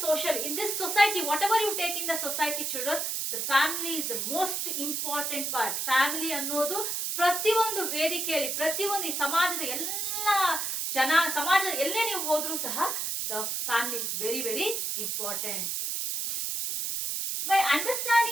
in this society, whatever you take in the society children, the family is the most important part. Family ಅನ್ನೋದು ಪ್ರತಿಯೊಂದು ವೇದಿಕೆಯಲ್ಲಿ ಪ್ರತಿಯೊಂದು ಈ ಸಮಾಜದ ಎಲ್ಲ ಸಮಾಜದ ಎಲ್ಲೇ ನೀವು ಹೋದ್ರೂ ಸಹ the family is very important. By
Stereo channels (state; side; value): noise; right; hiss, 1 dB below the sound